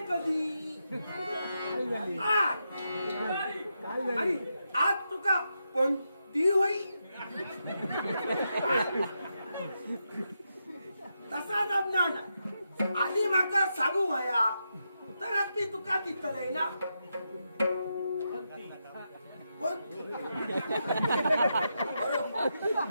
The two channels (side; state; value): both; inverted; correlation -0.85